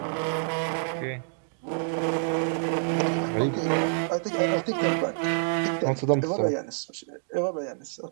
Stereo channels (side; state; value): left; silent; digital silence